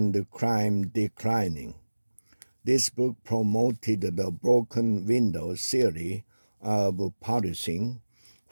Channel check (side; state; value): both; inverted; correlation -1.00